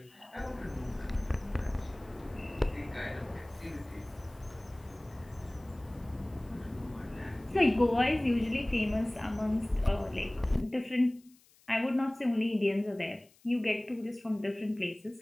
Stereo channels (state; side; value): noise; left; hiss, 29 dB below the sound